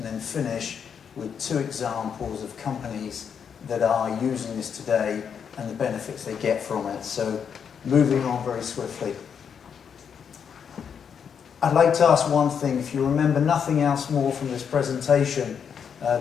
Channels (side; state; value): right; quieter; 7.3 dB